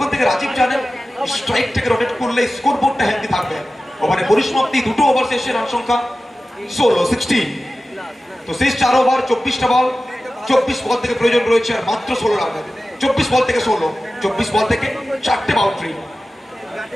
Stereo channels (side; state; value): both; normal; correlation 0.95